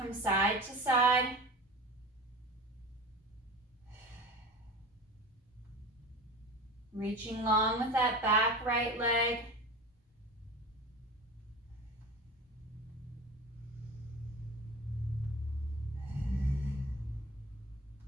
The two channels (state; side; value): normal; both; correlation 0.34